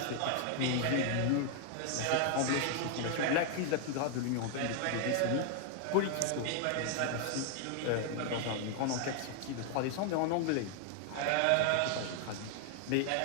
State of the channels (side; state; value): both; different; correlation 0.00